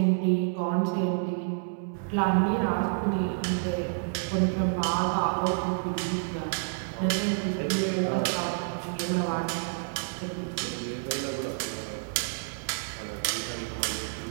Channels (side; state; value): left; silent; digital silence